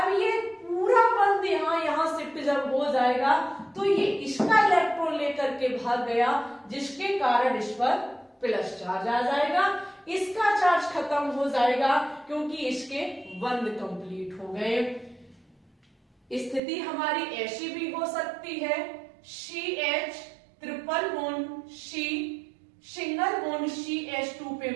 ये पूरा बंध यहाँ शिफ्ट जब हो जाएगा तो ये इसका इलेक्ट्रॉन लेकर के भाग गया जिसके कारण इस पर प्लस चार्ज आ जाएगा, इसका चार्ज खत्म हो जाएगा क्योंकि इसके बंध कंप्लीट हो गए। स्थिति हमारी ऐसी भी हो सकती है, CH triple bond C single bond CH2 पे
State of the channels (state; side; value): drops out; left; at 16.6 s